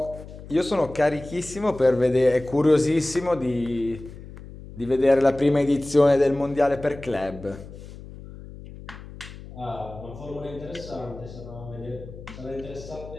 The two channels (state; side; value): noise; left; hum, 15 dB below the sound